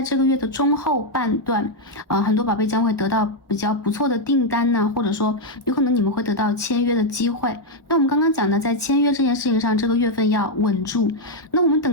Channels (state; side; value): normal; both; correlation 0.00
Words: 这个月的中后半段，很多宝贝将会得到比较不错的订单呢，或者说有可能你们会得到签约的机会。那我们刚刚讲的在签约这件事情上，这个月份要稳住。那我们